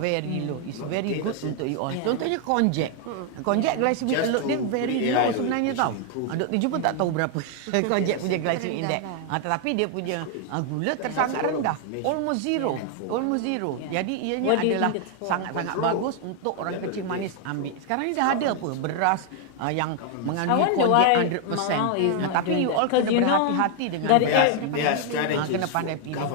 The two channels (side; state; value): both; different; correlation 0.00